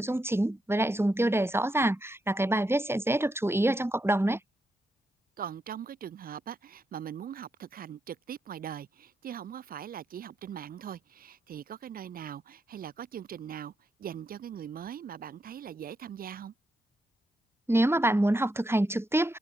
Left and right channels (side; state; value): both; normal; correlation 0.83